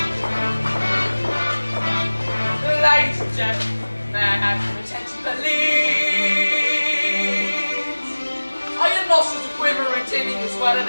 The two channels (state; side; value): inverted; both; correlation -1.00